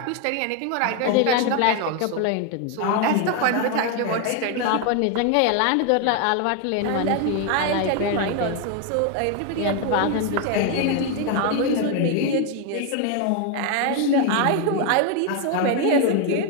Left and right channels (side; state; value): both; different; correlation 0.01